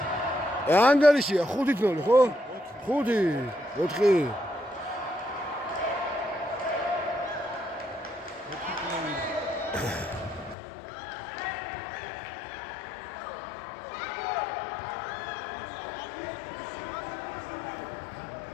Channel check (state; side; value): drops out; right; at 10.6 s